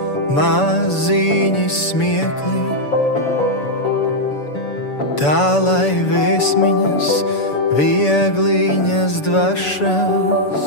maziņi smiekli, tā lai vēsmiņas, viegliņas dvašas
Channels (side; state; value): right; late; 6.9 ms